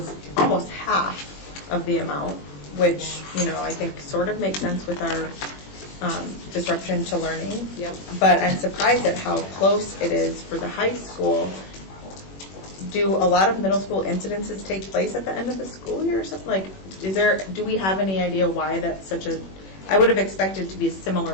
almost half of the amount, which, I think sort of makes sense with our disruption to learning. Yep. But I'm surprised at how close it is for the high school. Do a lot of middle school incidences take place at the end of the school year or something? Do we have any idea why that's I would have expected to be a similar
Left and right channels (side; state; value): right; late; 21 ms